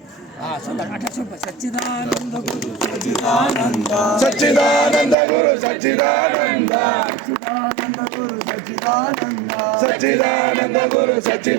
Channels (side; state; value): left; drops out; at 5.2 s